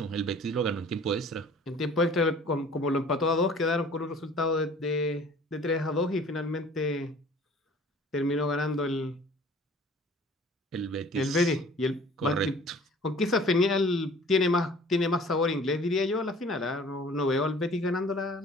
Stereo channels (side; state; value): both; normal; correlation 0.49